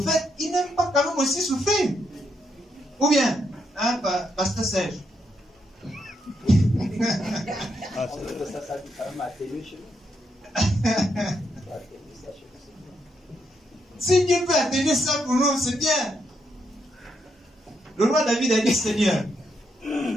ils n'aiment pas quand même aussi souffrir. Ou bien, hein, pasteur Serge. Si Dieu peut atteindre ça pour nous, c'est bien. Le roi David a dit, Seigneur,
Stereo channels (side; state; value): both; normal; correlation 0.79